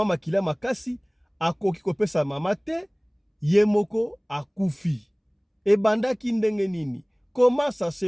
makila makasi akoki kopesa mama te, ye moko akufi. Ebandaki ndenge nini? Comment ça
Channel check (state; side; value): identical; both; correlation 1.00